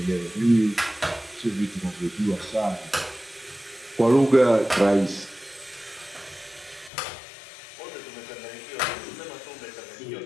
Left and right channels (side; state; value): right; drops out; at 6.9 s